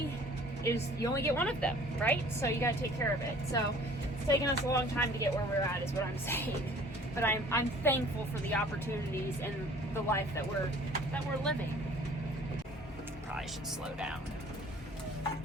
you only get one of them, right? So you got to take care of it. So it's taken us a long time to get where we're at, is what I'm saying. But I'm thankful for the opportunities and the life that we're living. Probably should slow down.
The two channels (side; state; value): both; normal; correlation 0.51